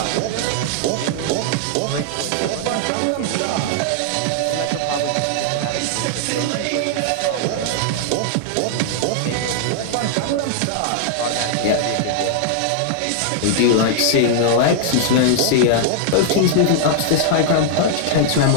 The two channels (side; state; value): both; different; correlation -0.01